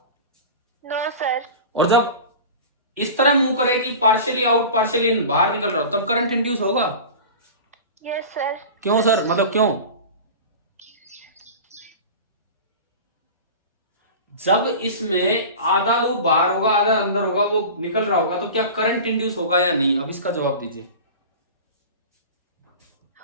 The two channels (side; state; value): both; inverted; correlation -0.34